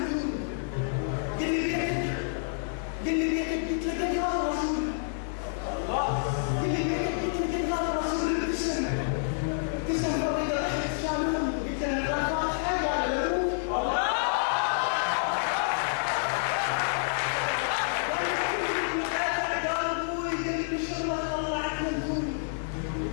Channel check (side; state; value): right; silent; 59 dB below the other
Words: قال لي بيتك قلت له قد غاب الرسول. قال لي بيتك قلت له قد غاب الرسول. ابتسم فريدة ضحكت شالون، قلت له انا فاتحه قال له